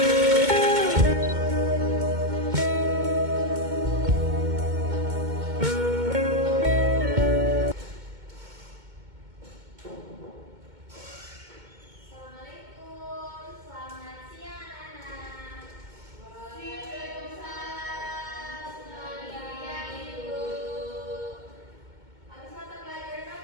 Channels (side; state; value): left; late; 2.2 ms